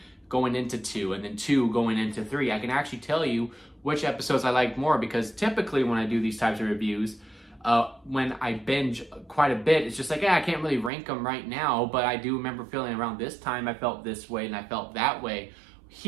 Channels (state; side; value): drops out; left; at 10.9 s